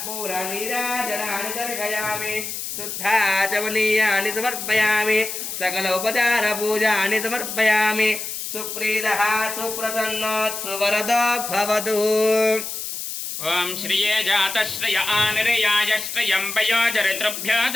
दर्शयामि शुद्धाचमनीयानि समर्पयामि सकल उपचारपूजानि समर्पयामि सुप्रीतः सुप्रसन्नोत्सुवरदो भवतु ओम श्रिये जातश्रिय आनिर्याय श्रियं वयोचरितृभ्यो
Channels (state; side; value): noise; left; hiss, 6 dB below the sound